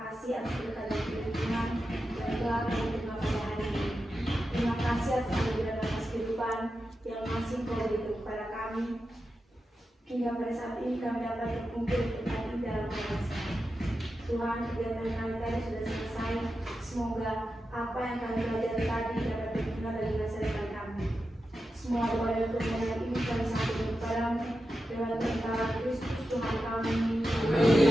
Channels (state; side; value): normal; both; correlation 0.90